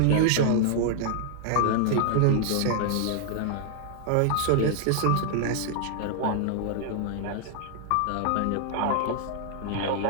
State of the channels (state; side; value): different; both; correlation 0.00